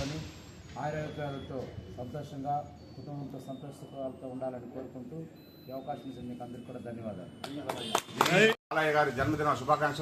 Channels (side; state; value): both; identical; correlation 1.00